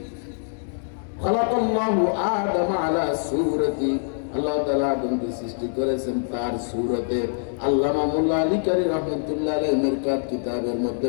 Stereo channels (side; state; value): right; silent; digital silence